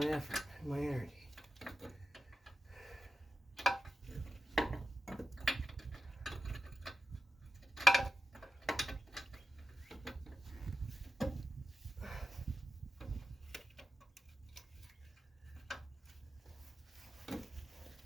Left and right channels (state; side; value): normal; both; correlation 0.93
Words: effort and my energy.